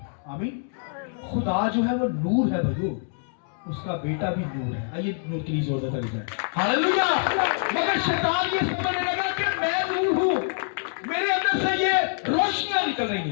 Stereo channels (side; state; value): right; silent; digital silence